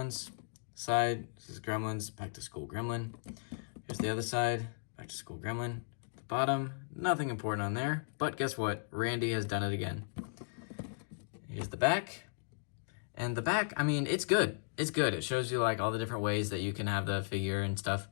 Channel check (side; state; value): right; silent; digital silence